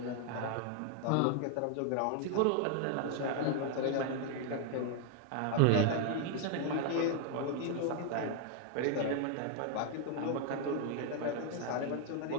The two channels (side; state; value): both; different; correlation 0.00